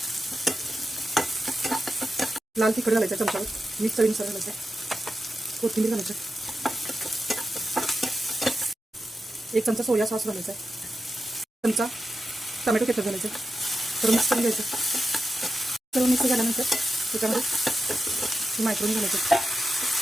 लाल तिखट घालायचं चमच्यावर, मीठ चवीनुसार घालायचं, कोथिंबीर घालायचं, 1 चमचा सोया सॉस घालायचा, चमचा टोमॅटो केचप घालायचं, तर मिक्स करून घ्यायचं। सर्व मिक्स झाल्यानंतर त्याच्यामध्ये मायक्रोनी घालायचं,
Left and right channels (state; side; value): normal; both; correlation 0.90